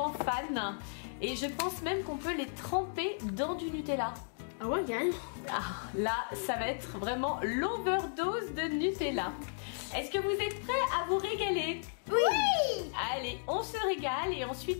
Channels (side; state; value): right; silent; digital silence